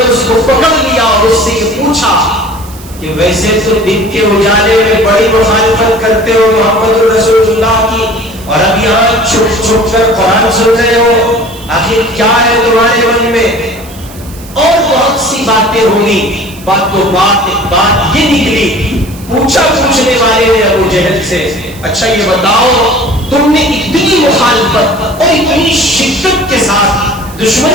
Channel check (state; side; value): noise; right; hiss, 20 dB below the sound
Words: اس کو پکڑ لیا اور اس سے یہ پوچھا کہ ویسے تو دن کے اجالے میں بڑی مخالفت کرتے ہو محمد رسول اللہ کی، اور اب یہاں چھپ چھپ کر قرآن سن رہے ہو، آخر کیا ہے تمہارے من میں؟ اور بہت سی باتیں ہوئی، بات یہ نکلی، پوچھا پوچھنے والے نے ابو جہل سے، اچھا یہ بتاؤ تم نے اتنی مخالفت اور اتنی شدت کے ساتھ